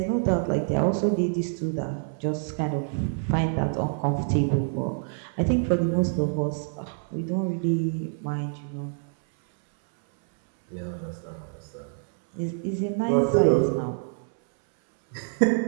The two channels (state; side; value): silent; left; 61 dB below the other